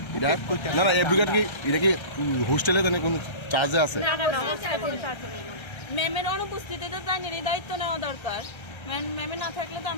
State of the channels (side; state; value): right; late; 1.3 ms